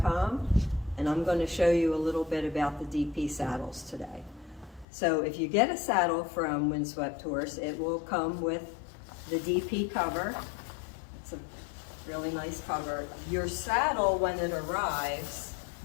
and I'm going to show you a little bit about the DP saddles today. So if you get a saddle from Windswept Horse, it will come with the DP cover. It's a really nice cover. Your saddle, when it arrives,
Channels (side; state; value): right; drops out; at 4.9 s